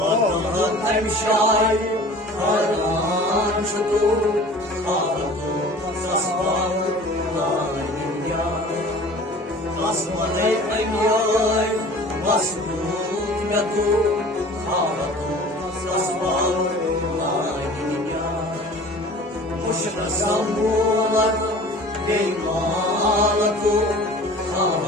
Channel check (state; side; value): normal; both; correlation 0.44